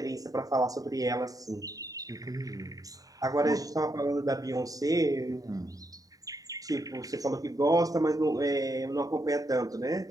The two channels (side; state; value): left; late; 0.18 ms